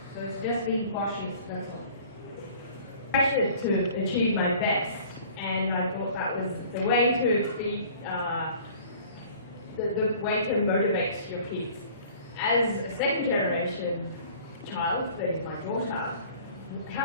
So it's just being cautious, that's all. Pressured to achieve my best, and I thought that was the way to be, the way to motivate your kids. As a second generation child, that is my daughter,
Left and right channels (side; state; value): both; inverted; correlation -0.49